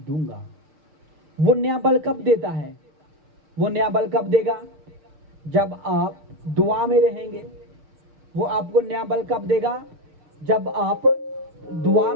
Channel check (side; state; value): left; late; 6.2 ms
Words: वो नया बल कब देता है? वो नया बल कब देगा? जब आप दुआ में रहेंगे। वो आपको नया बल कब देगा? जब आप दुआ